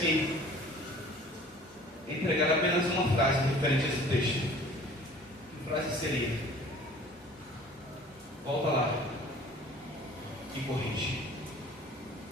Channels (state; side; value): normal; both; correlation 0.48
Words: entregar apenas uma frase referente a esse texto, que frase seria? Volta lá e corrige.